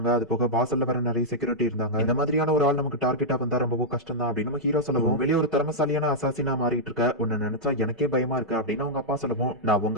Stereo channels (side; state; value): both; normal; correlation -0.07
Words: அது போக வாசல்ல வர நிறைய செக்யூரிட்டி இருந்தாங்க, இந்த மாதிரியான ஒரு ஆள் நமக்கு டார்கெட்டா வந்தா ரொம்பவும் கஷ்டம் தான் அப்படின்னு நம்ம ஹீரோ சொல்லவும், வெளியே ஒரு திறமசாலியான அசாசினா மாறிட்டு இருக்க, உன்னை நினைச்சா எனக்கே பயமா இருக்கு அப்படின்னு அவங்க அப்பா சொல்லவும், நான்